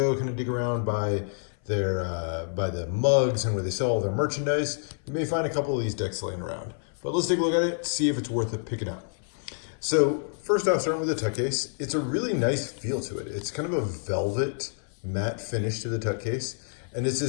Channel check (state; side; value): silent; right; 58 dB below the other